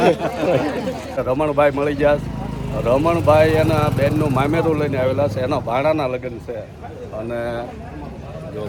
રમણભાઈ મળી ગયા રમણભાઈ એના બેનનું મામેરું લઈને આવેલા છે એના ભાણાના લગ્ન છે અને જો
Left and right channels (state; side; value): identical; both; correlation 1.00